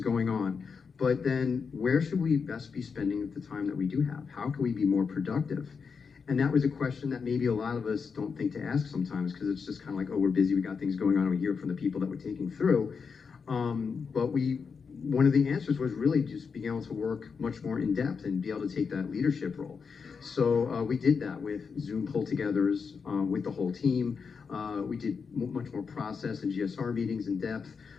on, but then where should we best be spending the time that we do have? How can we be more productive? And that was a question that maybe a lot of us don't think to ask sometimes because it's just kind of like, oh, we're busy, we got things going on, and we hear from the people that we're taking through. But we one of the answers was really just being able to work much more in depth and be able to take that leadership role. So we did that with Zoom pull-togethers with the whole team. We did much more process and GSR meetings in depth.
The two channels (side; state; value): right; quieter; 5.6 dB